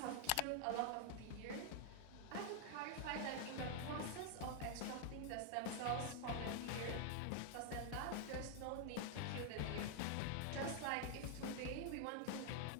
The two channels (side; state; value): both; different; correlation 0.00